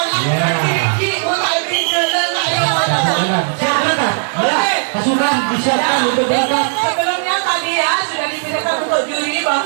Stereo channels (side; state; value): left; silent; digital silence